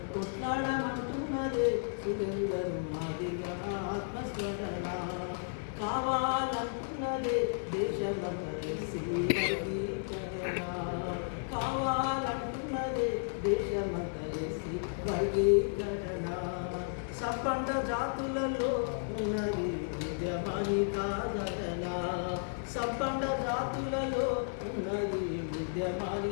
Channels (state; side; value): silent; right; digital silence